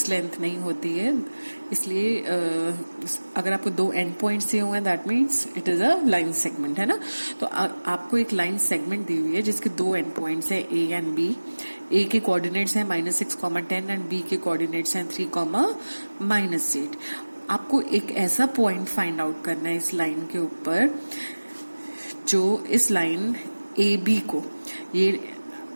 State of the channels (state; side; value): inverted; both; correlation -1.00